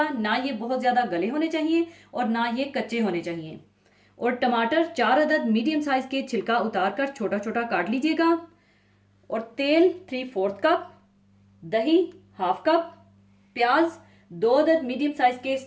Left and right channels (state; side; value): identical; both; correlation 1.00